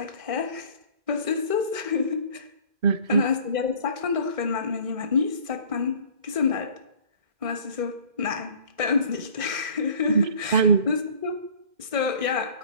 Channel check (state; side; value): late; left; 1.6 ms